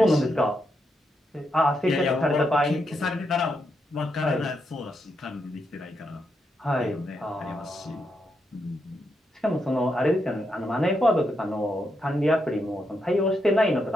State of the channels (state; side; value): normal; both; correlation 0.82